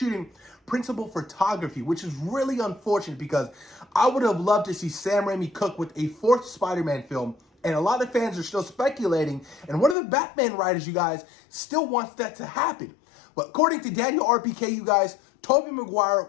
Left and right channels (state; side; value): drops out; right; at 10.0 s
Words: principal photography, which is really unfortunate because I would have loved to see Sam Raimi cook with a fourth Spider-Man film, and a lot of fans are still speculating, and one of the Batman writers, you guys, still wants that to happen. But according to Daniel RPK, you guys, Tobey